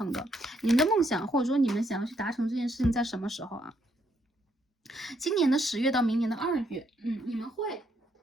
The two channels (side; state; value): both; normal; correlation 0.73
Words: 的。你们的梦想，或者说你们想要去达成这件事情在什么时候啊？今年的10月到明年的2月，